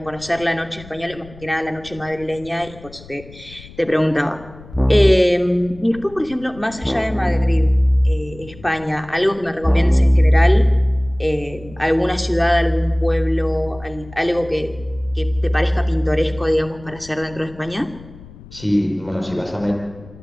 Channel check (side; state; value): left; noise; rumble, 19 dB below the sound